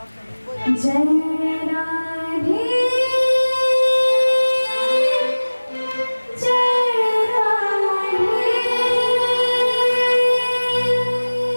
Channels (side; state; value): both; inverted; correlation -1.00